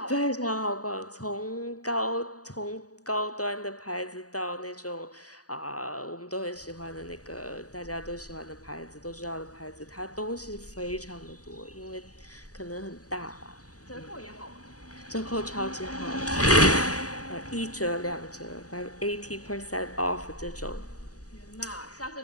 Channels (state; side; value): late; right; 0.67 ms